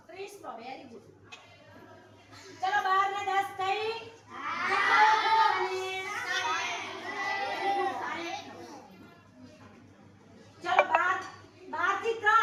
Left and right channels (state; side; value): identical; both; correlation 1.00